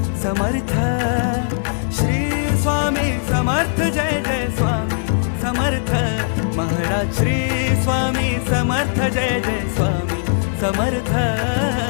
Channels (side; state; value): right; silent; digital silence